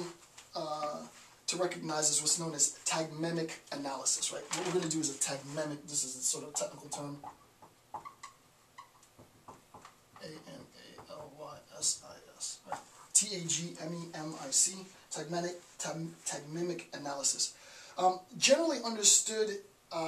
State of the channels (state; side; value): identical; both; correlation 1.00